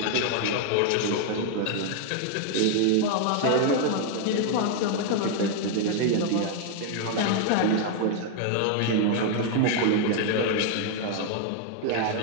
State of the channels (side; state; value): both; different; correlation 0.00